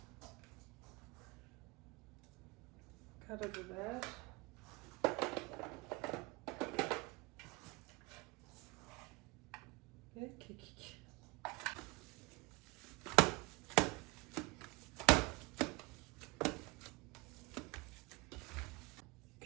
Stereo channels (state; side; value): quieter; left; 25.0 dB